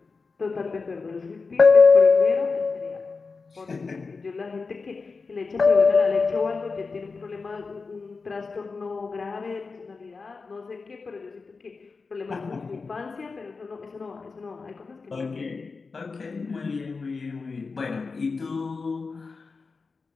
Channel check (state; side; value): quieter; right; 4.4 dB